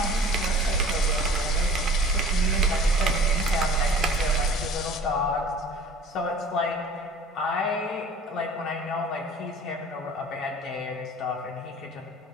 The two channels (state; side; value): normal; both; correlation 0.46